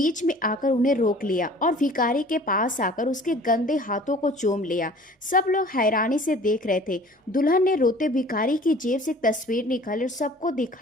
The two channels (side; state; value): both; normal; correlation 0.48